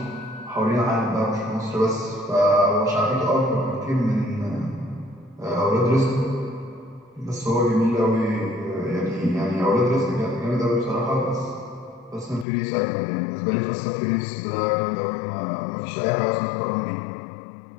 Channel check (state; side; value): drops out; right; at 12.5 s